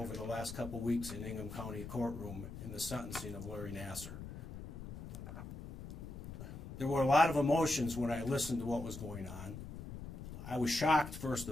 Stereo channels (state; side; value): noise; left; rumble, 10 dB below the sound